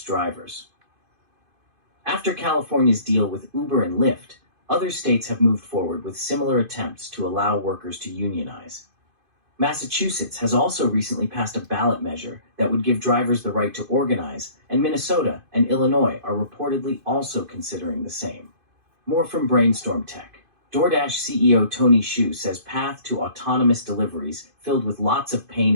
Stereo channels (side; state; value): left; late; 2.5 ms